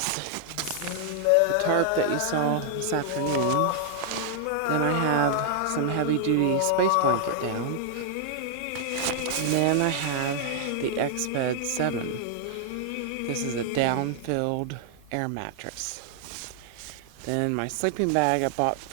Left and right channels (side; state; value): both; different; correlation -0.01